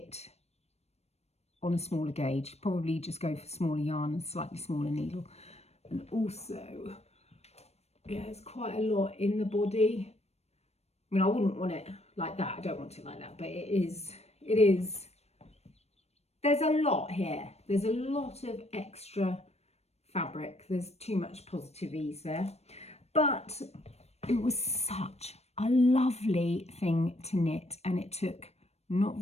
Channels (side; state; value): right; late; 0.31 ms